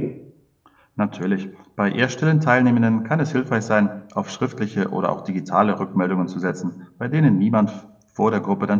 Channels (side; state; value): both; identical; correlation 1.00